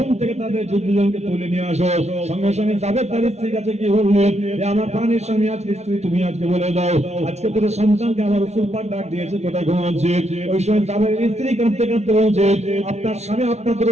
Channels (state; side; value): late; left; 0.32 ms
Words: থেকে তাদের দুজনকে তুলে নিয়ে আসো। সঙ্গে সঙ্গে যাবের তার স্ত্রীর কাছে গিয়ে বললেন, এ আমার প্রাণের স্বামী, আজকে স্ত্রী তুমি আজকে বলে দাও আজকে দুটো সন্তানকে আমার রাসূল পাক ডাক দিয়েছে, কোথায় ঘুমাচ্ছে? ওই সময় যাবের স্ত্রী কাঁদতে কাঁদতে বলছে, আপনার স্বামী আপনার দুটো